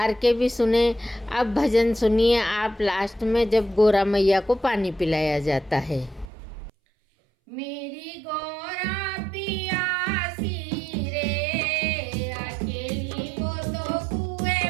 के भी सुने। अब भजन सुनिए आप लास्ट में जब गौरा मैया को पानी पिलाया जाता है। मेरी गौरा पियासी रे अकेली वो तो कुएं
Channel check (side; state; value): left; drops out; at 6.2 s